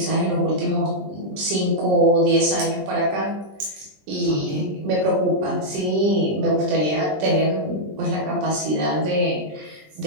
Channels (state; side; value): late; left; 20 ms